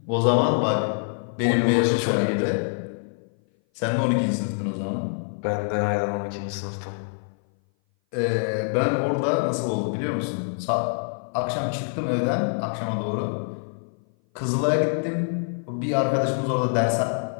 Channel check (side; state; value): right; silent; 58 dB below the other